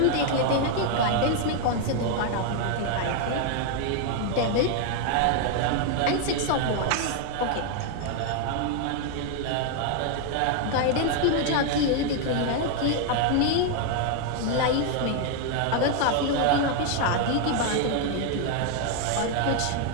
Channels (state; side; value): different; both; correlation 0.00